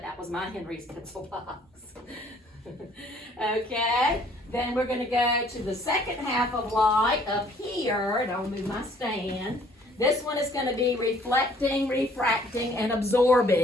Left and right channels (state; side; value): normal; both; correlation 0.59